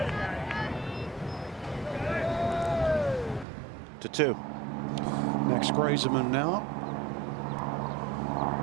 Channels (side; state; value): left; drops out; at 3.5 s